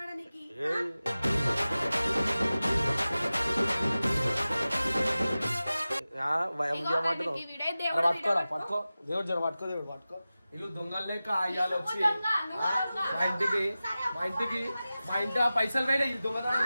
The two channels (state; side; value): inverted; both; correlation -0.96